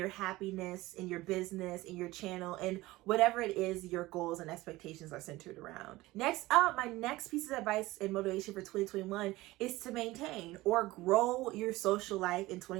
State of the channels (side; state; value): left; quieter; 19.0 dB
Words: happiness, in your business, in your channel, and whatever it is your goals and expectations are centered around. Next up, my next piece of advice and motivation for 2021 is to maintain or grow your social life in